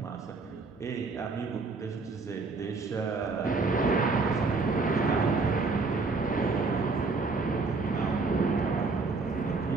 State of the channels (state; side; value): quieter; left; 4.0 dB